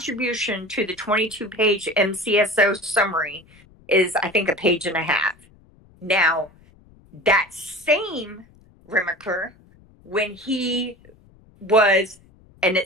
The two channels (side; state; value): left; noise; rumble, 28 dB below the sound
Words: to the 22-page MCSO summary is, I think, a page and a half. Now, that same Remaker, when he was, and